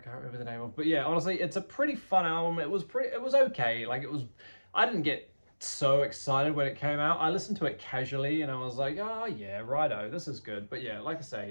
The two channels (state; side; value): inverted; both; correlation -1.00